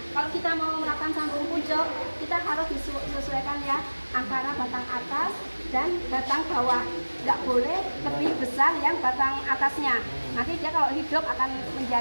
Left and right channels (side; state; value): both; inverted; correlation -1.00